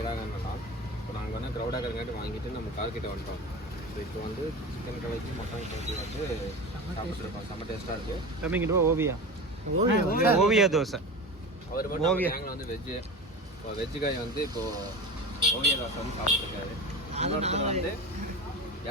இப்போ நாங்கள் வந்து க்ரௌடாக இருக்கிறங்காட்டி வாங்கிட்டு நம்ம கார்கிட்ட வந்துட்டோம். ஸோ இப்போ வந்து சிக்கன் கலக்கி மட்டன் கலக்கி வந்து சாப்பிட்ருக்கோம். செம்ம டேஸ்ட்டாக இருக்குது. கம்மிங்கிட்டு ஓவியா ஓவியா ஓவியா தோசை. அவர் மட்டும் கேங்கில் வந்து வெஜ்ஜு. இப்போ வெஜ்ஜு காய் வந்து இப்போது ஓவியா தோசை வந்து சாப்பிட்ருக்காரு. இன்னொருத்தர் வந்து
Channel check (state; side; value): normal; both; correlation 0.29